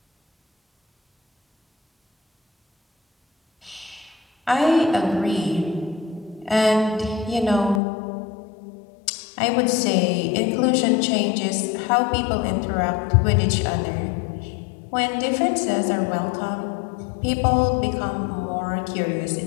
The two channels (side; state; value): right; drops out; at 7.8 s